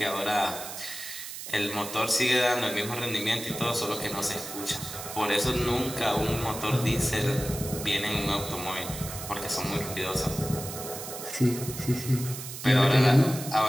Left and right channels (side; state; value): right; noise; hiss, 9 dB below the sound